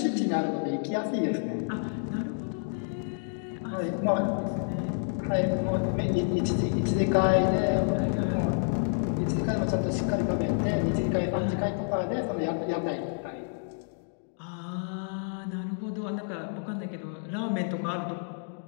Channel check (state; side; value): silent; right; digital silence